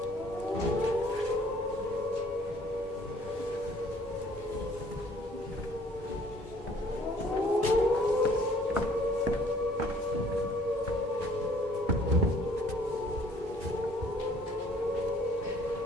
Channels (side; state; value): both; normal; correlation 0.58